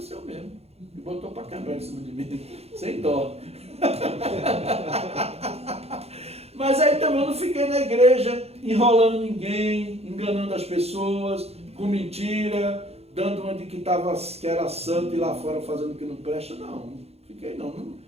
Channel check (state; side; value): late; left; 0.30 ms